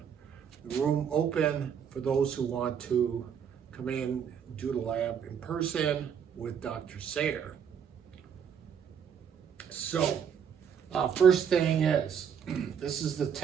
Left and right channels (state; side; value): quieter; left; 7.7 dB